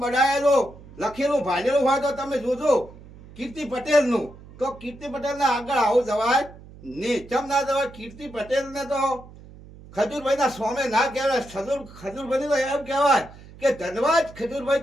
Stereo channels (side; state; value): right; noise; hum, 19 dB below the sound